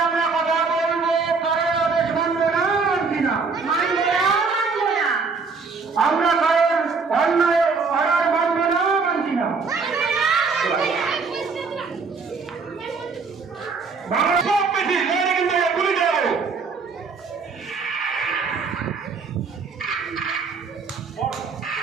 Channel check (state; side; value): quieter; left; 4.7 dB